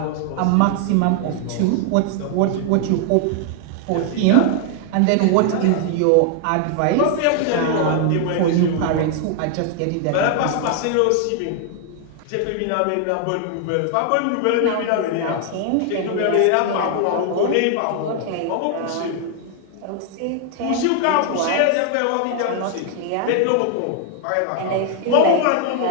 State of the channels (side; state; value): both; different; correlation 0.00